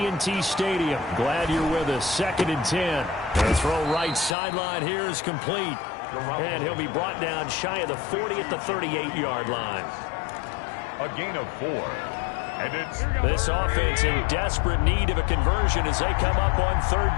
Stadium. Glad you're with us. 2nd and 10. The throw right sideline here is complete. And he'll be brought down shy of the 40 at the 38-yard line. A gain of 4. And it's this offense in desperate need of a conversion as they come up on 3rd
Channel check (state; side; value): drops out; right; at 4.4 s